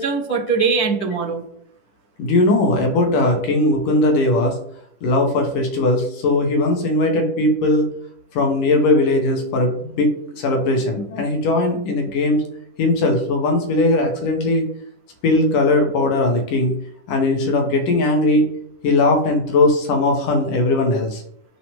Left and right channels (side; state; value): right; late; 11 ms